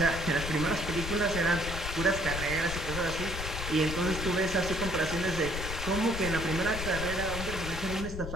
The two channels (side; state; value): left; noise; rumble, 6 dB below the sound